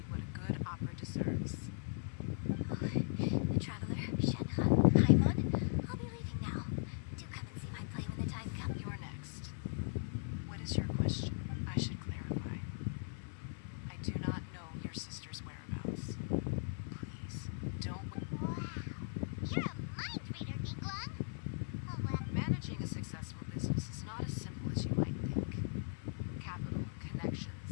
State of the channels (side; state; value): right; silent; 52 dB below the other